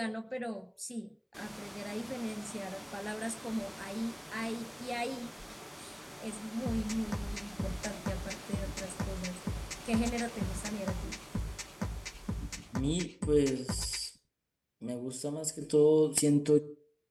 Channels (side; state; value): both; identical; correlation 1.00